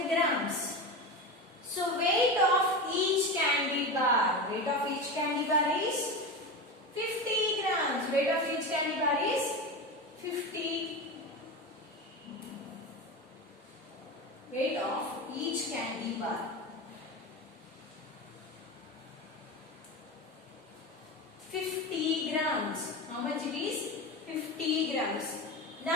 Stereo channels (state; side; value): normal; both; correlation 0.23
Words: grams. So weight of each candy bar. Weight of each candy bar is 50 grams. Weight of each candy bar is 50. Weight of each candy bar. 50 grams. How much it is? 50 grams.